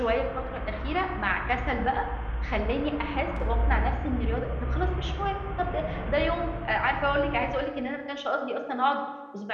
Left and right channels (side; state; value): both; identical; correlation 1.00